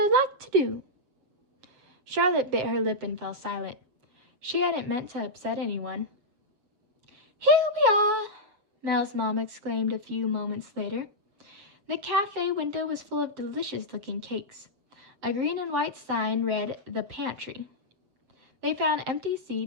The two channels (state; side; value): late; left; 7.6 ms